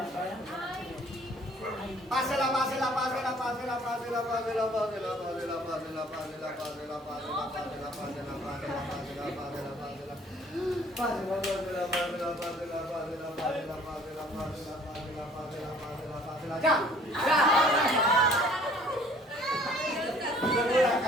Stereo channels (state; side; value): normal; both; correlation 0.55